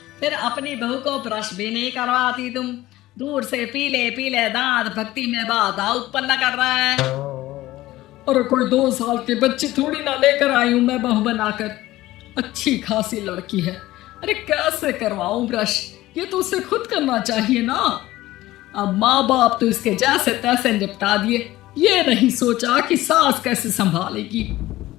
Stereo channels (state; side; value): quieter; right; 16.7 dB